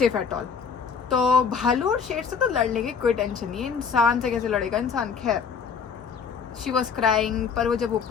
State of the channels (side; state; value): right; quieter; 6.1 dB